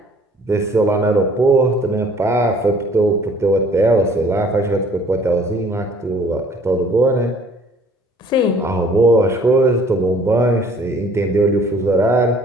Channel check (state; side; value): normal; both; correlation 0.55